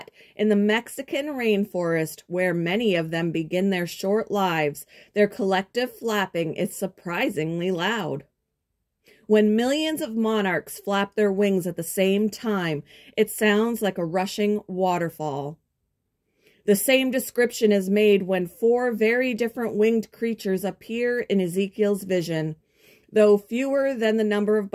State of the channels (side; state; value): both; identical; correlation 1.00